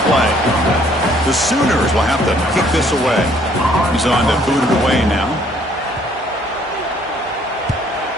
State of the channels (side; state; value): both; normal; correlation 0.62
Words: play. The Sooners will have to kick this away. He's on to boot it away now.